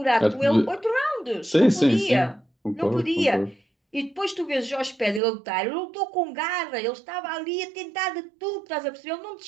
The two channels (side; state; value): left; drops out; at 5.2 s